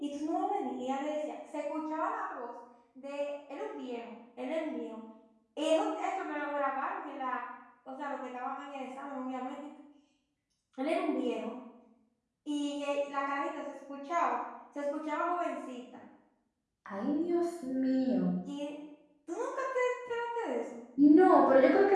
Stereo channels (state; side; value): identical; both; correlation 1.00